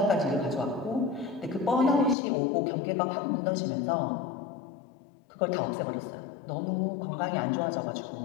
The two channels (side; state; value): right; drops out; at 2.1 s